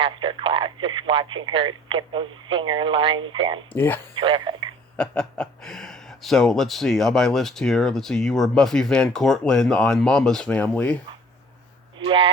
class, just watching her get those zinger lines in. Yeah. Terrific. So, let's see, on my list here, you were Buffy Van Cortlandt on Mama's Family.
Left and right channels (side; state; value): both; normal; correlation 0.50